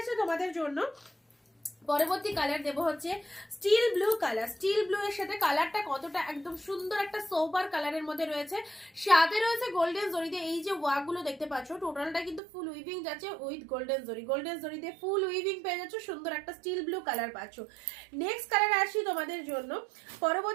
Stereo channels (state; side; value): drops out; left; at 12.4 s